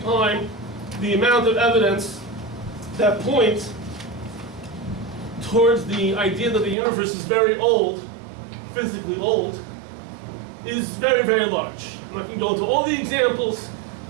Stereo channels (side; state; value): left; drops out; at 6.8 s